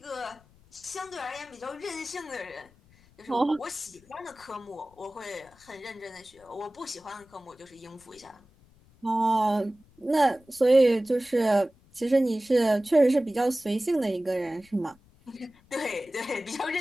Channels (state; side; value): noise; left; rumble, 29 dB below the sound